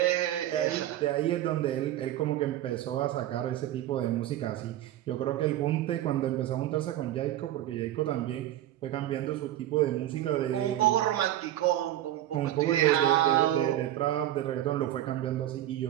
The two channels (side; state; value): left; quieter; 13.2 dB